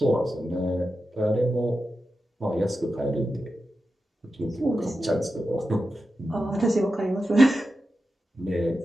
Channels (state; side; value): normal; both; correlation 0.91